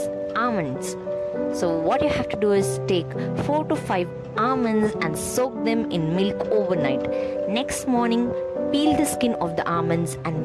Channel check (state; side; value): identical; both; correlation 1.00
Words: almonds. So what you have to do is take 4 to 5 almonds and soak them in milk overnight. Next morning, peel the skin of the almonds